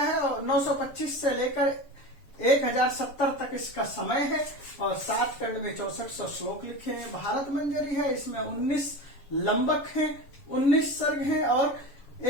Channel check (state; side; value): late; right; 7.0 ms